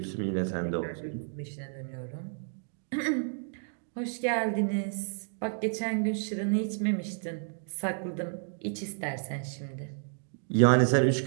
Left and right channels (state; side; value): silent; left; digital silence